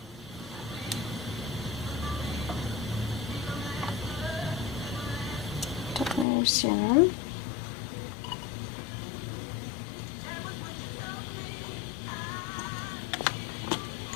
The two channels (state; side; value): drops out; right; at 6.2 s